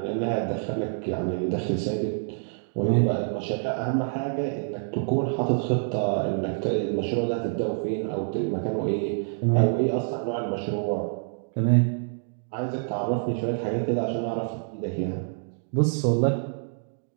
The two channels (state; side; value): silent; left; digital silence